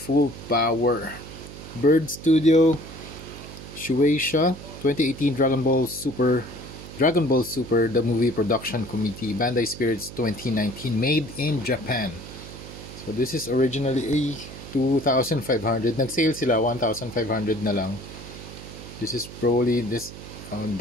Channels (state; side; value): noise; right; hum, 14 dB below the sound